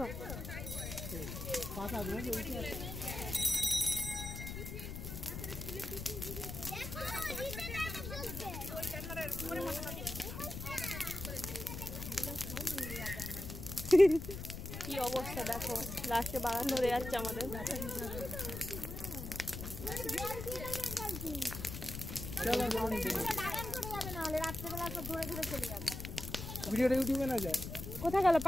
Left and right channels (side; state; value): left; noise; rumble, 7 dB below the sound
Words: কি অবস্থা দেখো, লাস্টে বাগান ধরে যাচ্ছে আমাদের। ভিডিওটা ইউটিউবে না যায়? কোথায় গেল?